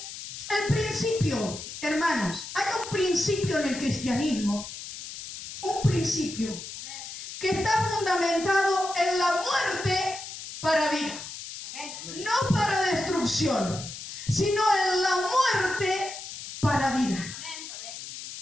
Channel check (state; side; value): noise; left; hiss, 10 dB below the sound